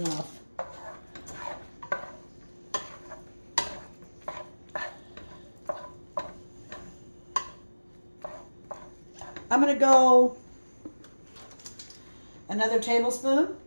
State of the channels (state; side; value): inverted; both; correlation -1.00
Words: I'm going to go another tablespoon.